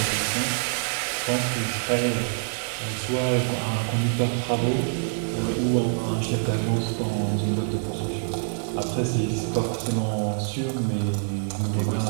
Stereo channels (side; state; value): left; silent; digital silence